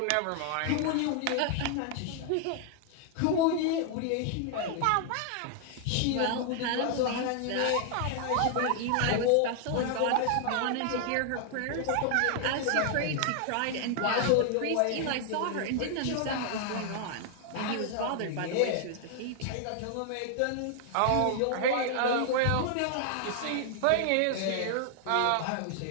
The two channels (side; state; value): both; different; correlation 0.00